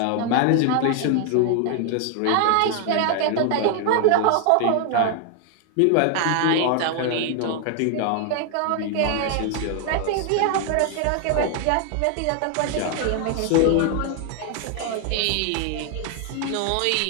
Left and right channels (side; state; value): both; different; correlation 0.00